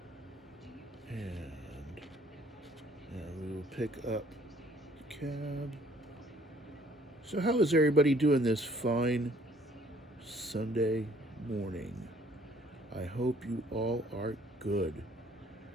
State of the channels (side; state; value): both; normal; correlation 0.60